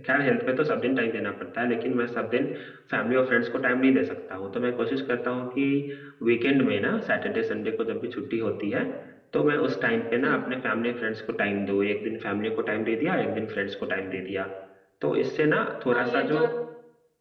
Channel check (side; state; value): both; identical; correlation 1.00